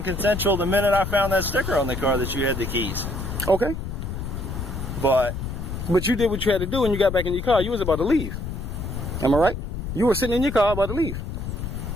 consensual the minute I found that sticker on the car that you had the keys. Okay. But you did what you had to do when you got back in your car. You was about to leave. Am I right? You were sitting in your car about to leave.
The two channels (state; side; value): noise; left; rumble, 5 dB below the sound